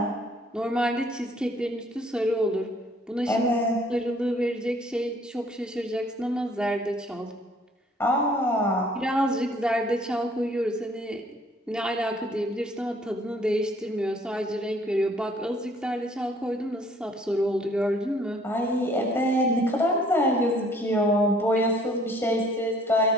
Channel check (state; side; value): normal; both; correlation 0.59